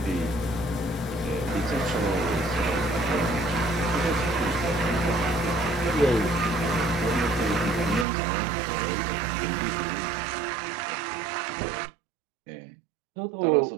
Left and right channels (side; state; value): left; drops out; at 8.1 s